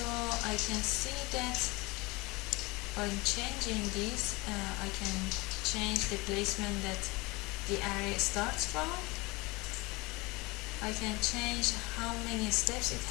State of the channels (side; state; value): right; quieter; 24.4 dB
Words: I can see that by changing this I can change the placement that the array starts from. I can change how many steps it